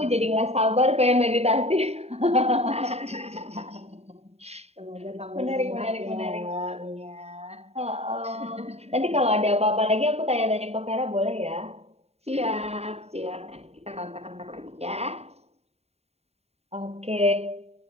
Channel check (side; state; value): left; late; 0.30 ms